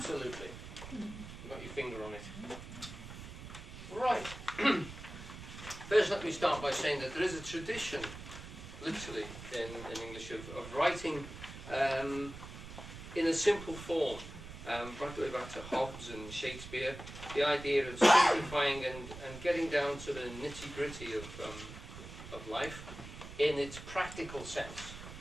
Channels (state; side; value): noise; right; rumble, 12 dB below the sound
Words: You've got your finger on it. Right. First, let me start by saying that there is a tradition, literally, in English, of writing in a simple form. Right the way back to Hobbes and Shakespeare, the idea of simplifying and getting down to the nitty-gritty of life in its practical sense.